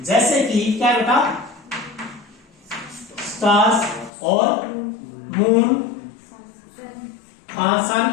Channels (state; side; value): drops out; right; at 4.1 s